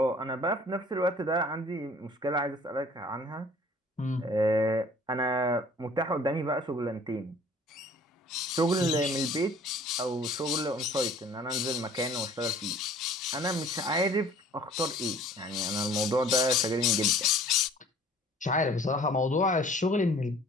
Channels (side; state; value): both; normal; correlation 0.51